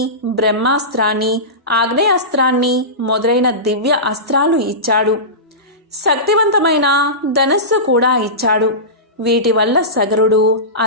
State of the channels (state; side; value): normal; both; correlation -0.20